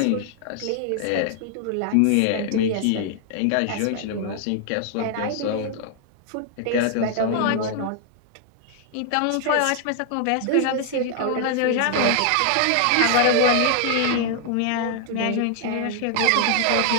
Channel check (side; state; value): both; different; correlation 0.00